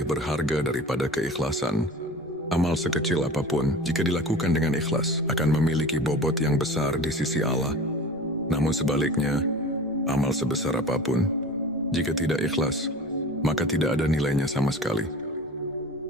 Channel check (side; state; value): right; noise; rumble, 28 dB below the sound